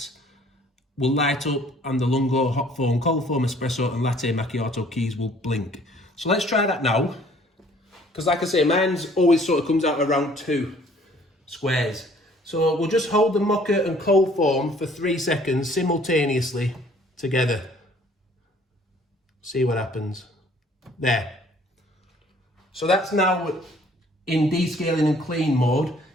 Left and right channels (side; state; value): both; normal; correlation 0.57